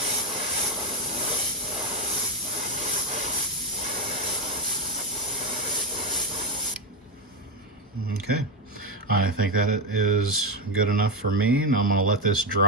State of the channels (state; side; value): normal; both; correlation 0.11